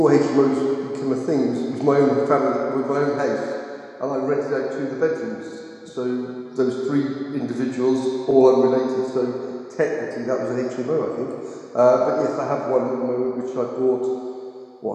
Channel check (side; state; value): both; identical; correlation 1.00